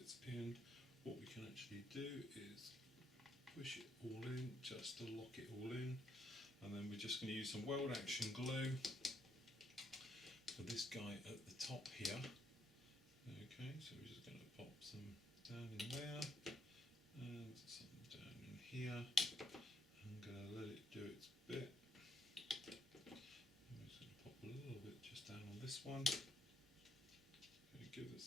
in, what we can actually do is push it all in, just to lock it all in, and then we're just going to use some weld action glue for this guy at the top here. Okay, so we're just going to pop some down in there and some down in here. I'm going to let it do its bit. I'm just going to pop a little bit just down on this one. Going to give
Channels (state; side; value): normal; both; correlation 0.74